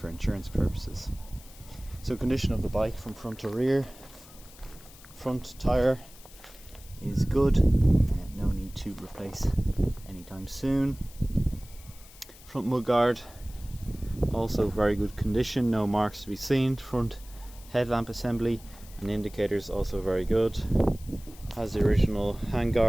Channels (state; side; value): noise; left; hiss, 21 dB below the sound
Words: insurance purposes. So condition of the bike from front to rear: front tyre is good, no need to replace anytime soon. Front mudguard also very good condition, no marks to be seen. Front headlamp assembly and indicators also very good. Has the original